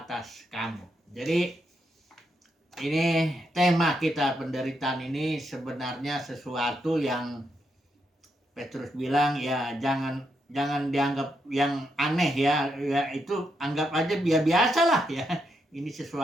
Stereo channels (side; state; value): both; normal; correlation 0.81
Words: kamu. Jadi ini tema kita, penderitaan ini sebenarnya sesuatu yang Petrus bilang ya jangan dianggap yang aneh ya, itu anggap aja biasa lah ya. Ini